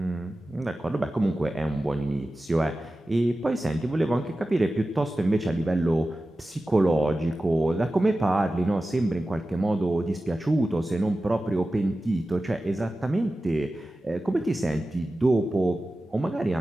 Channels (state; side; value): normal; both; correlation 0.94